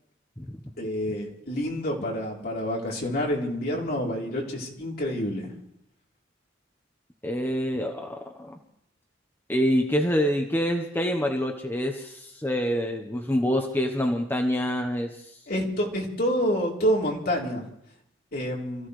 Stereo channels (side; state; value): both; normal; correlation 0.61